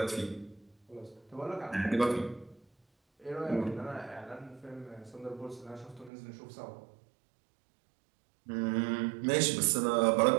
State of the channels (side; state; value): left; drops out; at 6.1 s